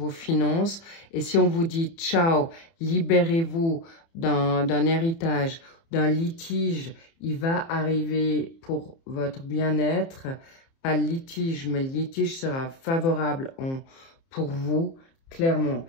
finances et si on vous dit ciao, libérez-vous d'un héritage, d'un litige, il va arriver pour votre bien-être, pas le litige, mais le litige sera favorable pour vous. Clairement,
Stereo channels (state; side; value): late; right; 30 ms